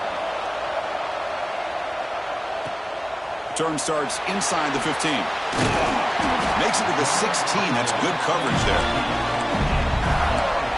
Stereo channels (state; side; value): identical; both; correlation 1.00